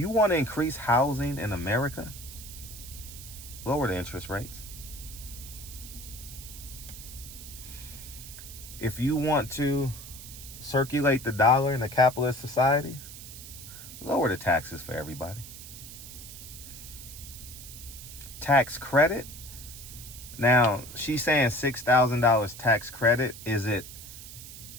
want to increase housing in America, lower the interest rates. If you want to circulate the dollar in a capitalist society, lower the taxes for everybody. Tax credit. Now, she's saying $6,000 tax credit. Is it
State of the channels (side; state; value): right; noise; hiss, 13 dB below the sound